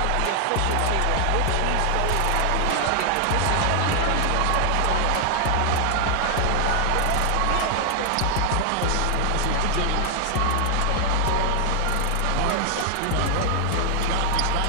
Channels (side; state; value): both; different; correlation 0.00